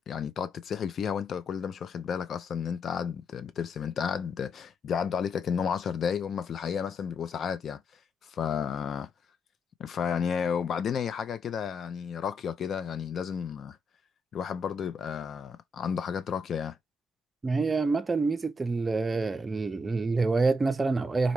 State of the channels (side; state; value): both; normal; correlation 0.79